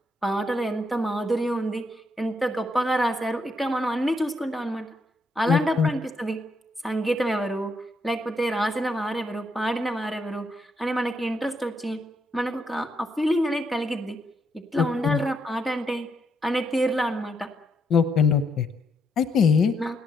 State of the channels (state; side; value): normal; both; correlation 0.77